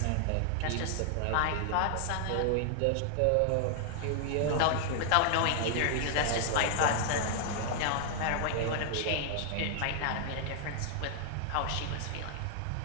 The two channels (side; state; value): both; different; correlation 0.00